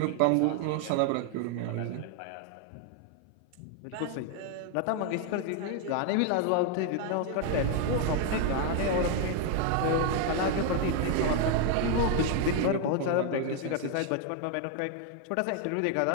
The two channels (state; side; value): different; both; correlation 0.00